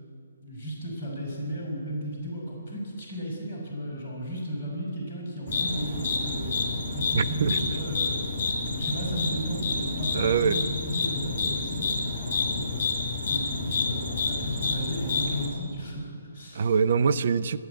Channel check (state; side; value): inverted; both; correlation -0.68